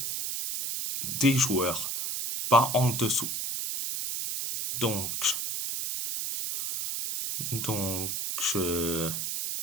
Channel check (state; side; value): noise; right; hiss, 2 dB below the sound